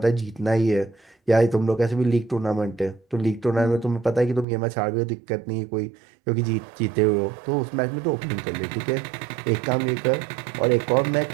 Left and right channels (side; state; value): left; drops out; at 4.5 s